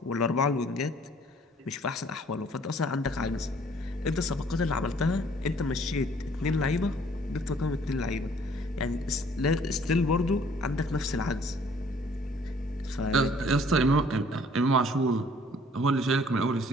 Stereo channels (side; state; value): both; normal; correlation 0.58